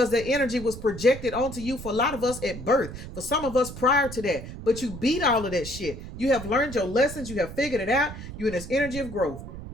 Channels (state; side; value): noise; right; rumble, 11 dB below the sound